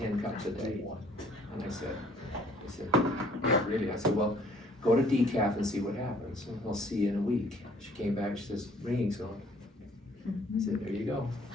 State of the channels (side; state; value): both; normal; correlation 0.59